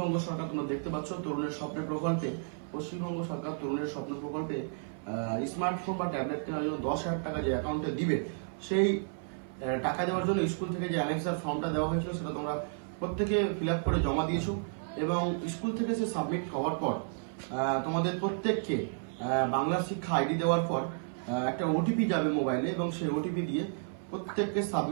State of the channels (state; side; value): silent; left; 56 dB below the other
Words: সরকার, তোমরা দেখতে পাচ্ছ তরুণের স্বপ্নের প্রকল্পে পশ্চিমবঙ্গ সরকার তরুণের স্বপ্ন প্রকল্পে স্মার্টফোন বা ট্যাবলেট কেনার জন্য 10,000 টাকা যে অ্যাকাউন্টে দিবে, সেই টাকা দেওয়ার জন্য স্কুল থেকে যে অ্যানেক্সার ফর্মটা দেওয়া হয়েছিল সেটা তোমরা প্রত্যেকে ফিল আপ করে জমা দিয়েছো এবং স্কুল থেকে সে সাবমিট হওয়ার পর তোমাদের প্রত্যেককে বাংলা শিক্ষা আইডি দেওয়ার পর একটা ওটিপি যাবে মোবাইলে এবং সেই ওটিপি দিয়ে প্রত্যেককে